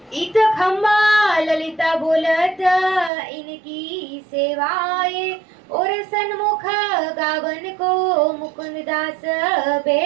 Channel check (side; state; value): left; drops out; at 3.1 s